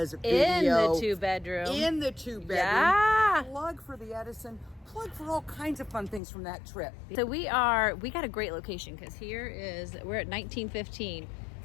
In video. the 2-bedroom. In the 2-bedroom. Yeah. Plug for the Edison. Plug for all kinds of fun things from that trip. So we got a great location because we're at 1915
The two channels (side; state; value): right; drops out; at 6.2 s